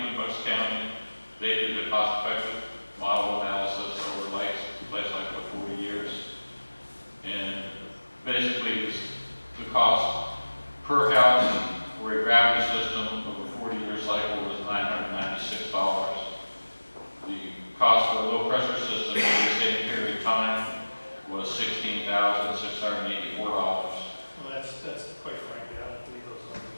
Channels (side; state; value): both; inverted; correlation -1.00